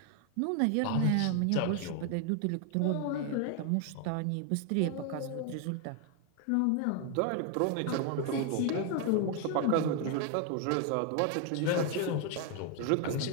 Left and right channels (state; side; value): different; both; correlation 0.00